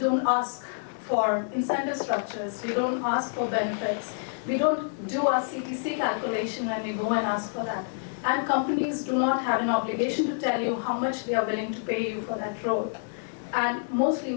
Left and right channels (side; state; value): right; silent; digital silence